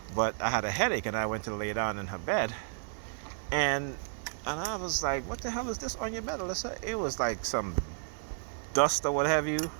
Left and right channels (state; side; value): silent; left; digital silence